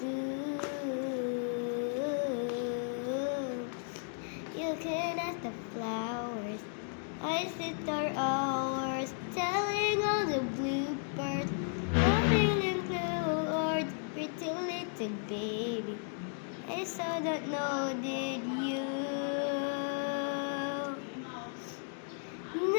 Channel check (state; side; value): silent; right; 55 dB below the other